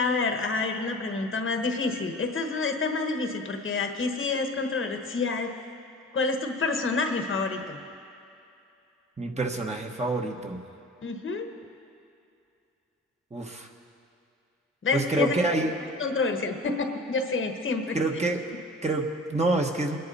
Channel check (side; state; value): both; normal; correlation 0.40